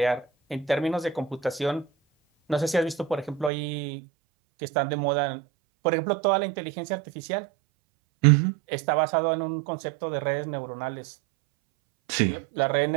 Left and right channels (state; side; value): drops out; left; at 3.5 s